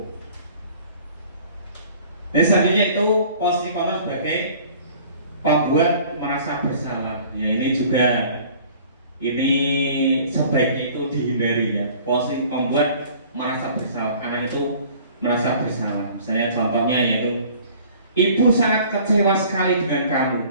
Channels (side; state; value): both; inverted; correlation -0.50